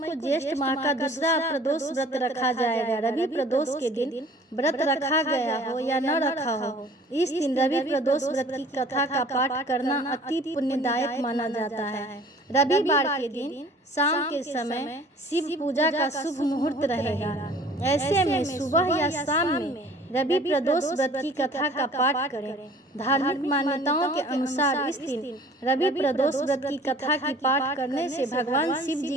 ज्येष्ठ माह का दूसरा प्रदोष व्रत रखा जाएगा। रवि प्रदोष के दिन व्रत रखा गया हो या न रखा हो, इस दिन रवि प्रदोष व्रत की कथा का पाठ करना अति पुण्यदायक माना जाता है। रविवार के दिन शाम के समय शिव पूजा का शुभ मुहूर्त रहेगा। ऐसे में सुबह या शाम में रवि प्रदोष व्रत की कथा का पाठ करें। धार्मिक मान्यताओं के अनुसार इस दिन रवि प्रदोष व्रत की कथा की पाठ करने से भगवान शिव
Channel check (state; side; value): normal; both; correlation 0.49